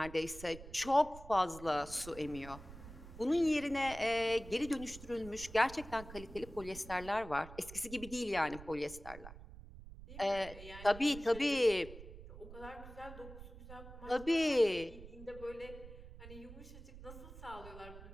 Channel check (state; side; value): noise; right; rumble, 15 dB below the sound